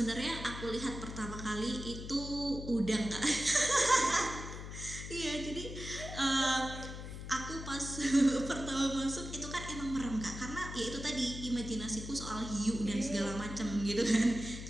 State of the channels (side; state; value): left; noise; hum, 9 dB below the sound